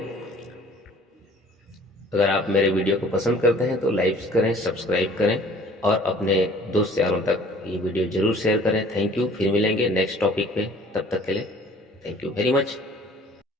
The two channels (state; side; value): normal; both; correlation 0.52